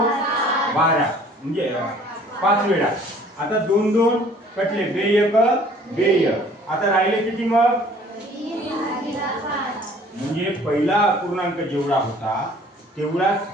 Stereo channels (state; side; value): normal; both; correlation 0.54